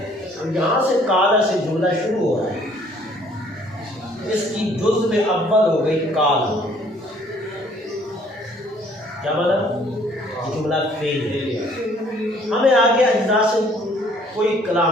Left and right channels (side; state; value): both; normal; correlation 0.60